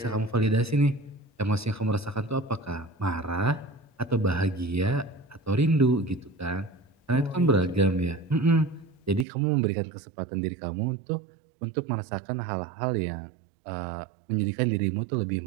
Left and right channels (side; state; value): left; drops out; at 9.2 s